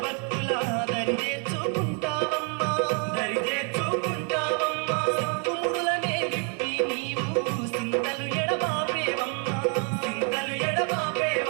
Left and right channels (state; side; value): quieter; left; 38.9 dB